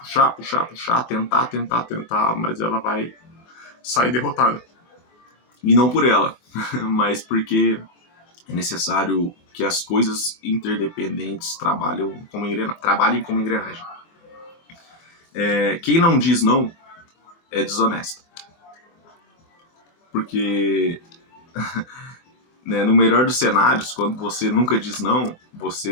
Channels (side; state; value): right; late; 24 ms